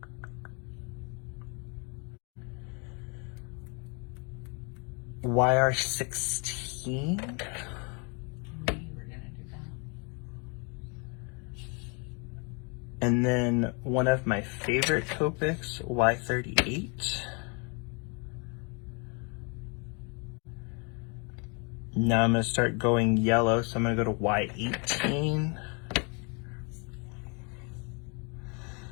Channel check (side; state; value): right; quieter; 34.2 dB